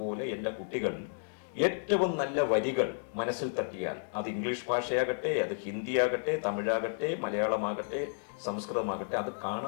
പോലെ എൻ്റെ കുട്ടികൾ ഏറ്റവും നല്ല വരികൾ മനസ്സിൽ തട്ടിയാൽ, അത് ഇംഗ്ലീഷ് ഭാഷയാകട്ടെ, അത് ഹിന്ദിയാകട്ടെ, തമിഴാകട്ടെ, മലയാളമാകട്ടെ, സംസ്കൃതമാകട്ടെ, അത്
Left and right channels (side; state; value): right; silent; digital silence